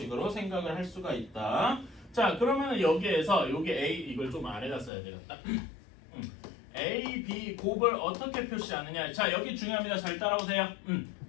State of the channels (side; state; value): right; drops out; at 4.9 s